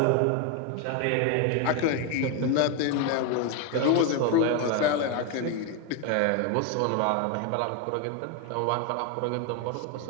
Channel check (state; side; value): different; both; correlation 0.02